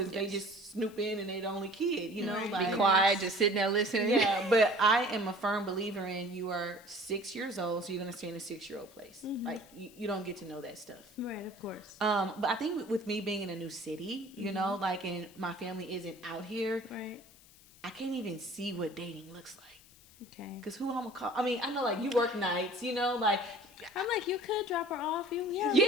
they Yes. just snoop in and they the only kid, you know. Right. Like, Be quiet, just sitting there listening. Yeah, but I am a firm believer in you are 6 years old, so you're going to stay in a 6-year-old place. Like, you don't get to know that stuff. Right, of course. But I think with me being in a new city, you know, like, and my family isn't out here, Right. I can't even see what dating looks like. Okay. Because who I'm going to call? I mean, I know, like, you work nights, you know, like, I'm like, you could drop her off. You You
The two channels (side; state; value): left; noise; hiss, 24 dB below the sound